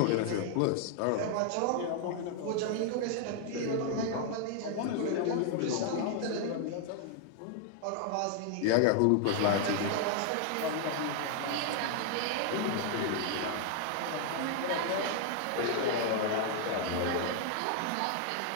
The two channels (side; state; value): both; different; correlation 0.00